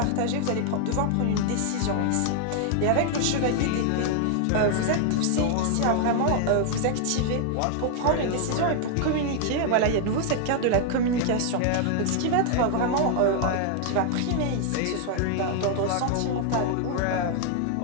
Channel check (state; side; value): different; both; correlation 0.00